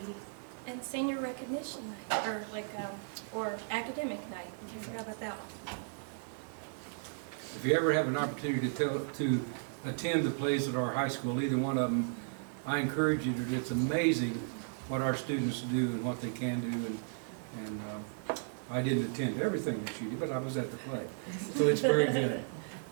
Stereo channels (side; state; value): left; silent; 55 dB below the other